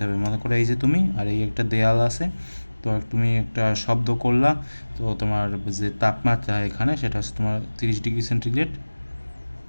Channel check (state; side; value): inverted; both; correlation -1.00